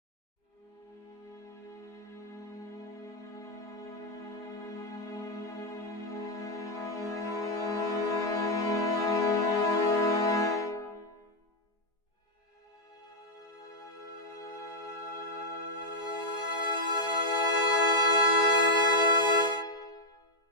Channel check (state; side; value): late; right; 5.0 ms